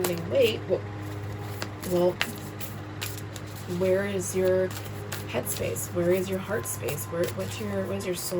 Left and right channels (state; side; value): identical; both; correlation 1.00